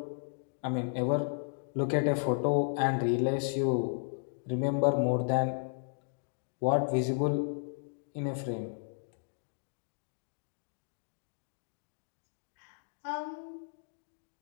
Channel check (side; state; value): right; silent; digital silence